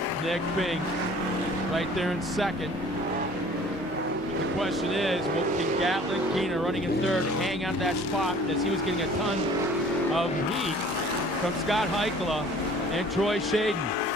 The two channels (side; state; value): both; normal; correlation 0.50